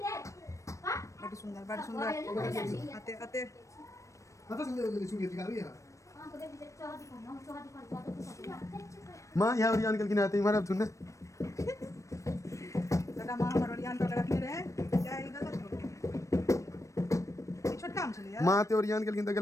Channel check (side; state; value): right; late; 0.15 ms